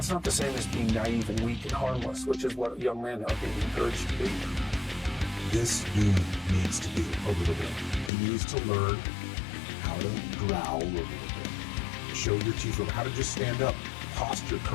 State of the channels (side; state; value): right; drops out; at 8.1 s